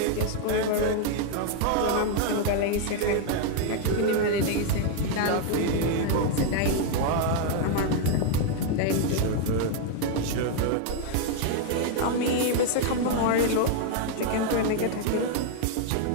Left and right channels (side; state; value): both; different; correlation 0.00